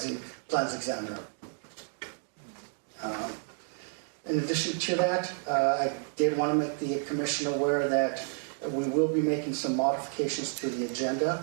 plans examiner. In addition to that, I did want to make the commission aware that we will be making some modifications to the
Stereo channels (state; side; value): silent; left; 57 dB below the other